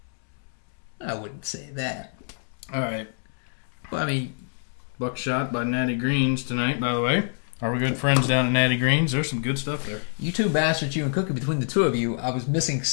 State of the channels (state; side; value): silent; right; digital silence